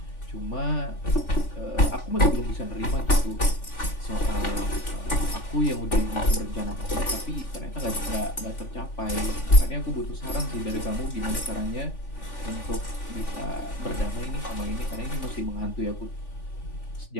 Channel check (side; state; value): right; late; 3.5 ms